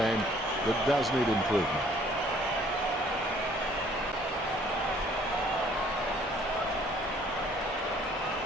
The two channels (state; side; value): normal; both; correlation 0.58